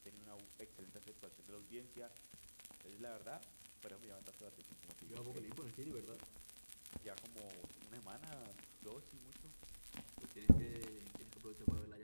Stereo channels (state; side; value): inverted; both; correlation -1.00